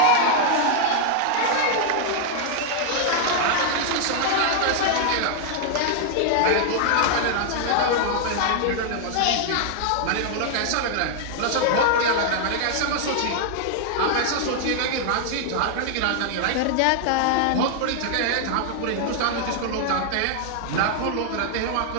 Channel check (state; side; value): different; both; correlation 0.00